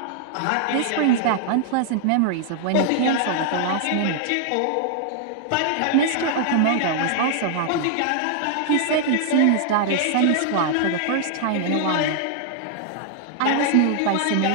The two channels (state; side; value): different; both; correlation -0.01